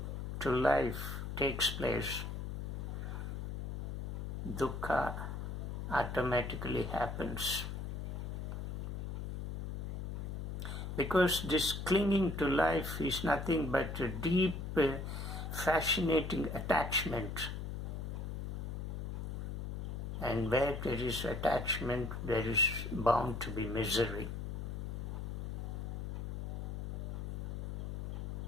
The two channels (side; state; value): left; noise; hum, 4 dB below the sound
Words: to life takes place, dukkha automatically happens. Because this clinging to life is nothing but a deep, fascinating attachment. And where there is attachment, there is bound to be misery.